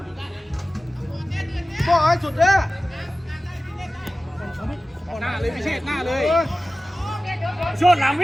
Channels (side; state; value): both; normal; correlation 0.96